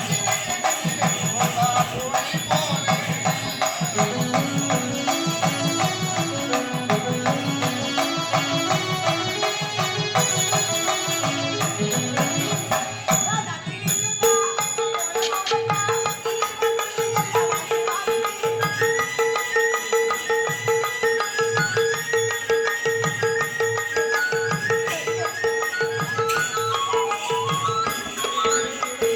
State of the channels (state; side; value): identical; both; correlation 1.00